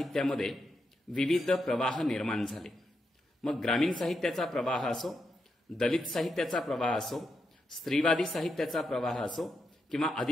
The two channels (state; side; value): normal; both; correlation 0.84